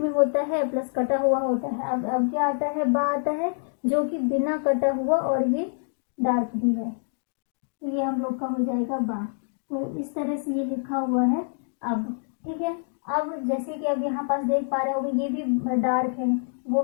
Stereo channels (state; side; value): silent; right; 60 dB below the other